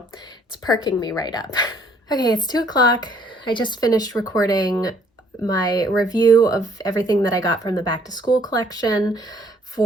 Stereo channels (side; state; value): both; normal; correlation 0.62